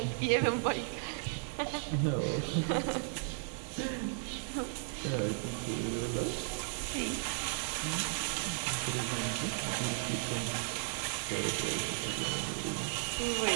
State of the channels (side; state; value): left; silent; 54 dB below the other